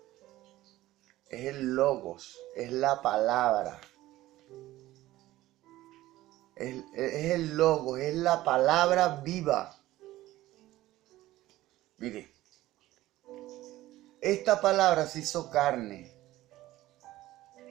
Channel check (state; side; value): quieter; left; 16.1 dB